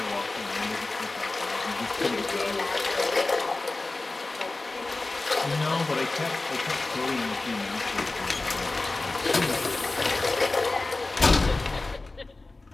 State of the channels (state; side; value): quieter; right; 3.2 dB